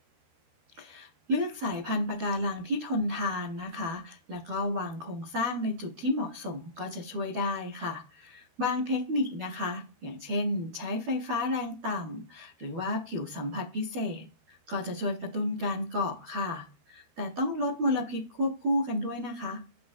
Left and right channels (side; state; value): left; late; 13 ms